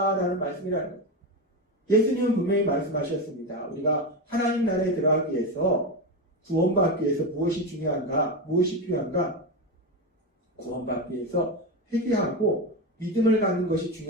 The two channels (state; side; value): normal; both; correlation 0.15